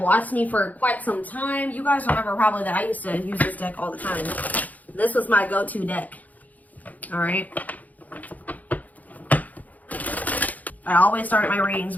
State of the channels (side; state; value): right; late; 0.078 ms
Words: me for quite some time, you guys remember probably that I used to use this deck all the time. This was my go-to deck. All right. I always start my readings